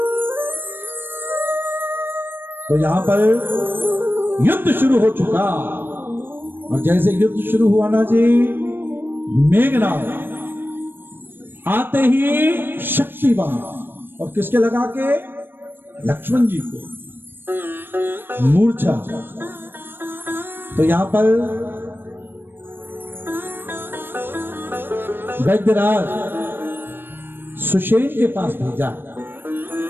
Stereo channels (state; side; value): late; left; 0.098 ms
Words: तो यहां पर युद्ध शुरू हो चुका, और जैसे युद्ध शुरू हुआ ना जी, मेघनाद आते ही शक्तिवान, और किसके लगा के, लक्ष्मण जी को मूर्छा। तो यहां पर वैद्यराज सुषेण के पास भेजा,